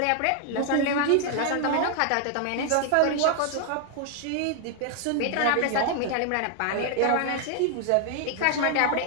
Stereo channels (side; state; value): both; different; correlation 0.00